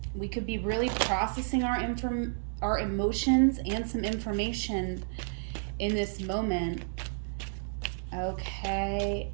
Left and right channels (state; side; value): silent; left; 57 dB below the other